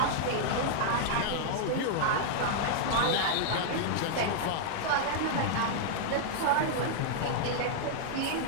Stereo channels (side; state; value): both; different; correlation -0.01